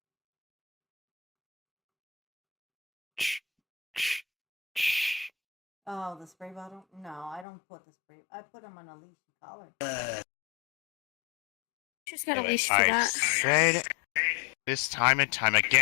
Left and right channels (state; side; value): drops out; right; at 7.5 s